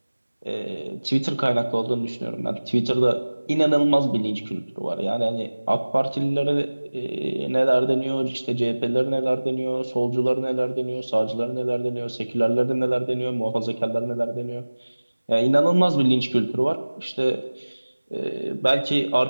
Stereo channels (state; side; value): inverted; both; correlation -1.00